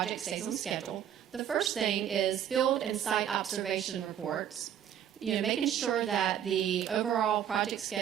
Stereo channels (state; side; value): quieter; left; 9.9 dB